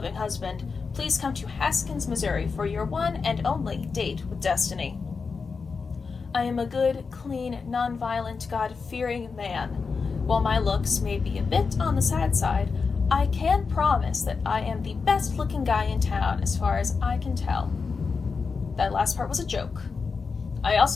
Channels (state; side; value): quieter; right; 5.0 dB